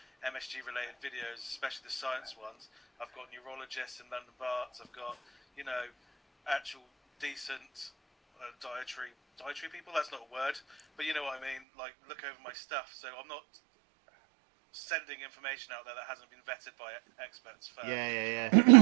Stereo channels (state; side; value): drops out; left; at 11.6 s